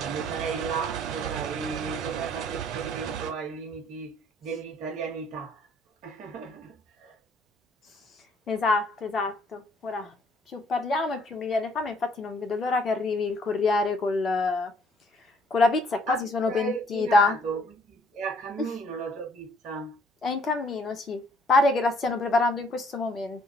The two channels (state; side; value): normal; both; correlation 0.62